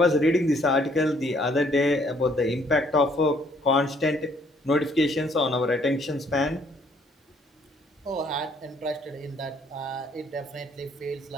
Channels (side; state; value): both; normal; correlation 0.65